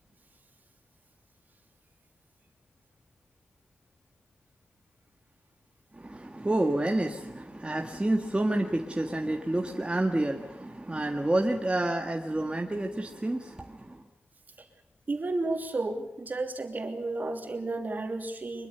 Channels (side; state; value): both; normal; correlation 0.95